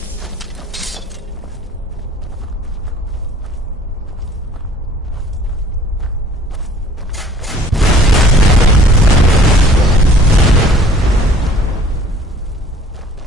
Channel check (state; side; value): normal; both; correlation 0.53